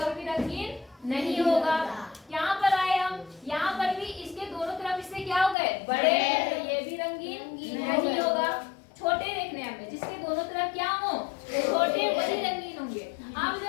भी रंगीन नहीं होगा। यहाँ पर आए हम, यहाँ पर भी इसके दोनों तरफ इससे क्या हो गए बड़े, तो ये भी रंगीन नहीं होगा। छोटे देखने हमें, जिसके दोनों तरफ क्या हो छोटे, वही रंगीन होंगे। अब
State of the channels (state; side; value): drops out; right; at 5.6 s